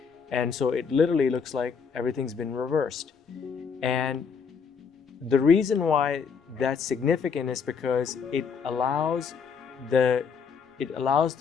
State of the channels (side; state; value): right; quieter; 6.0 dB